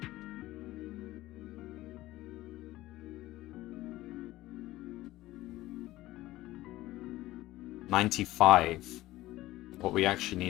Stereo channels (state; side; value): quieter; right; 16.7 dB